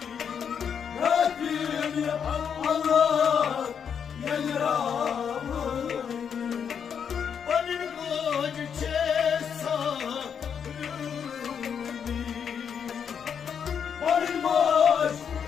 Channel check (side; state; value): right; quieter; 7.4 dB